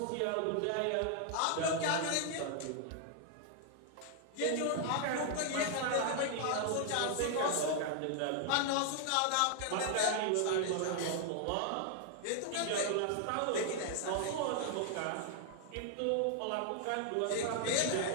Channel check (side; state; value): both; different; correlation 0.00